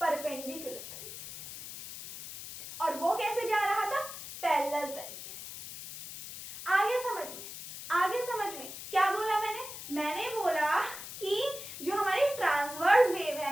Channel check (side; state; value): left; noise; hiss, 11 dB below the sound